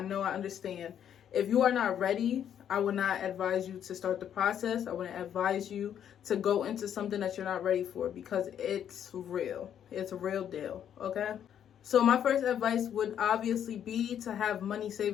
know, I understand. If you are not ready, I would not advise you to start the process. I wouldn't advise you to go into something that you're not ready for, because it's real. It's a real deal, okay? So my first advice would obviously be to have money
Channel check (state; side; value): quieter; right; 9.4 dB